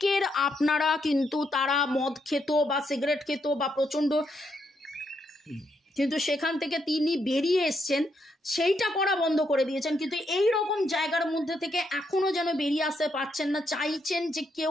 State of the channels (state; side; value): normal; both; correlation 0.78